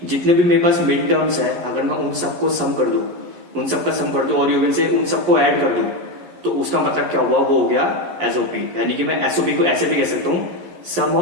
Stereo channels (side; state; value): left; late; 11 ms